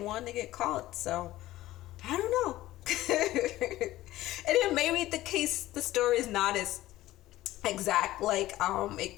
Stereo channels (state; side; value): quieter; right; 15.9 dB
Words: to get caught, so I don't know. And then maybe the story is not as exact, like it